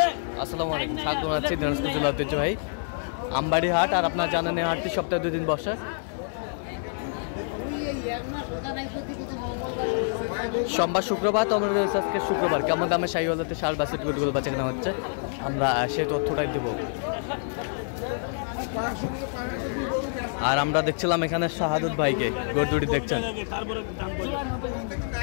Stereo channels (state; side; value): silent; right; 60 dB below the other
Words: আসসালামু আলাইকুম, স্বাগত জানাচ্ছি দিনাজপুর জেলা ঐতিহ্যবাহী আমবাড়ি হাট। আর আপনারা জানেন এই হাটটি সপ্তাহে 2 দিন বসে, সোমবার শুক্রবার। তো আমাদের আজকে শুক্রবার কেমন দামে শাহিওয়ালাতে ষাঁড় বাছুর গরুগুলো বাচ্চা কেনা হচ্ছে আমরা সেই তথ্যটাই দেব। আর আমরা দেখছিলাম এখানে শাহাদুত ভাইকে, গরু দুটি দেখছেন।